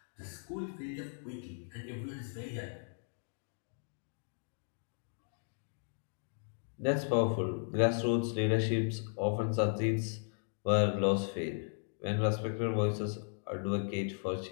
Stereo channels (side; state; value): right; silent; digital silence